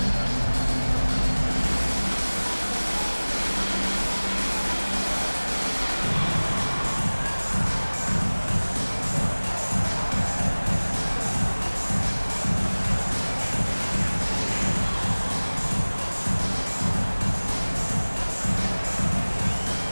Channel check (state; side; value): inverted; both; correlation -1.00